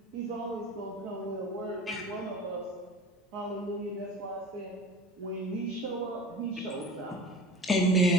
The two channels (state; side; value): normal; both; correlation 0.37